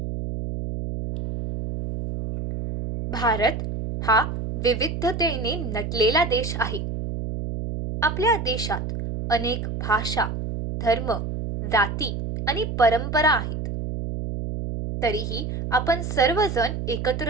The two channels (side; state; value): right; noise; hum, 4 dB below the sound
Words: भारत हा विविधतेने नटलेला देश आहे. आपल्या देशात अनेक भाषा, धर्म, जाती आणि परंपरा आहेत. तरीही आपण सर्वजण